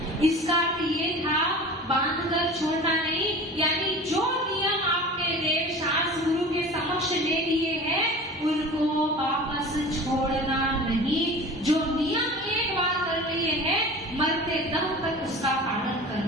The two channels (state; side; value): normal; both; correlation 0.37